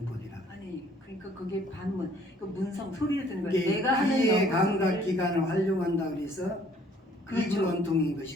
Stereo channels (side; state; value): both; normal; correlation 0.59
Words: 아니 그러니까 그게 반문, 그 문성 소리를 듣는 거예요. 이게 내가 하는 귀의 영어 감각 소리를. 기관을 활용한다 그래서 그렇죠. 익은 원통인